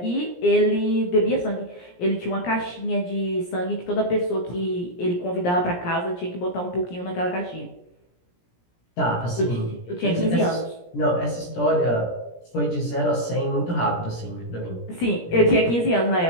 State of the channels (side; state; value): right; late; 17 ms